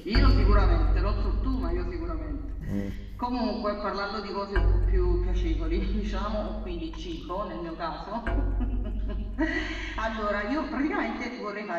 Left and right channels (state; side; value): identical; both; correlation 1.00